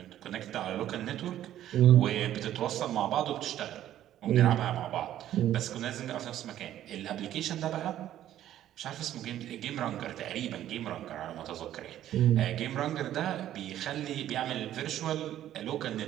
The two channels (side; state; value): left; quieter; 12.2 dB